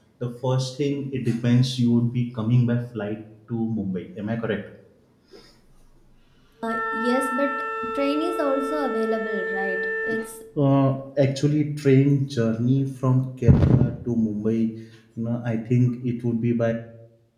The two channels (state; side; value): identical; both; correlation 1.00